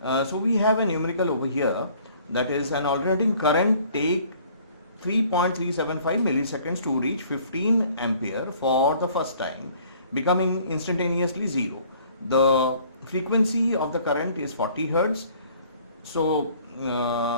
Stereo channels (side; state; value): both; inverted; correlation -0.56